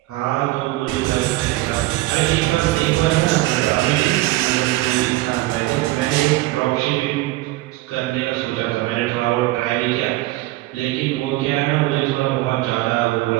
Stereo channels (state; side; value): quieter; left; 18.6 dB